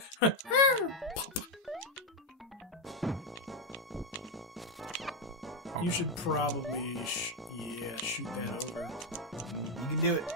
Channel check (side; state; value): both; normal; correlation 0.05